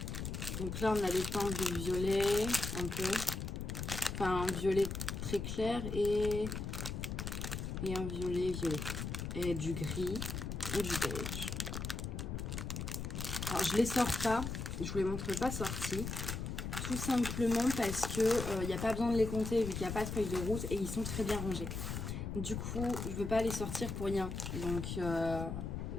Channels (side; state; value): left; noise; rumble, 4 dB below the sound